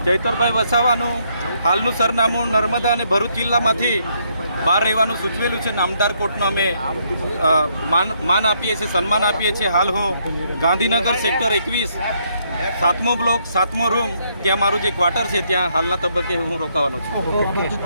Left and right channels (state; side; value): inverted; both; correlation -0.73